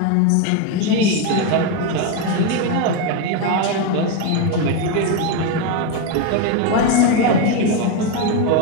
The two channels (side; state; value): both; different; correlation 0.03